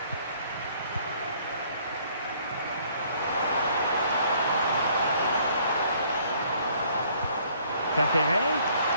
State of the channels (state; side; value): inverted; both; correlation -0.61